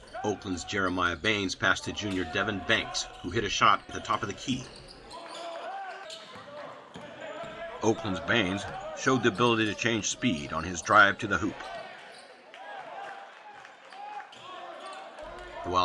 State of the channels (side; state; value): both; identical; correlation 1.00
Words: Oakland's Jeremiah Baines passed to junior Devin Banks, who hit a shot at the top of the key. Oakland's Baines showed the ability to change speed on his drive to the hoop. The